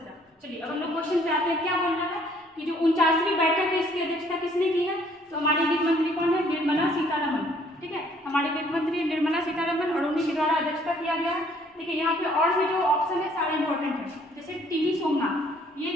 चलिए अब हम लोग क्वेश्चन पे आते हैं। क्या बोल रहा है कि जो 49वीं बैठक है इसकी अध्यक्षता किसने की है? तो हमारी वित्त मंत्री कौन है? निर्मला सीतारमण, ठीक है। हमारे वित्त मंत्री निर्मला सीतारमण, और उन्हीं के द्वारा अध्यक्षता किया गया है। देखिए यहाँ पे और भी जो ऑप्शन है सारे इंपॉर्टेंट है, जैसे टीवी सोमनाथ, ये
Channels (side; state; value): both; normal; correlation 0.61